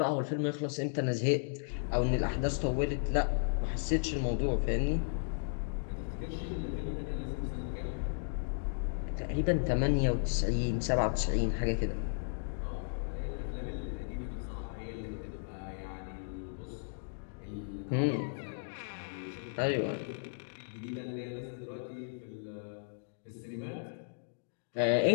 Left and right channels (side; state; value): right; silent; digital silence